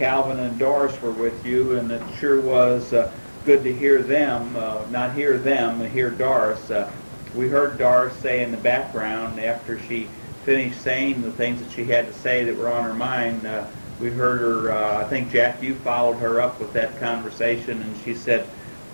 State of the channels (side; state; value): both; inverted; correlation -1.00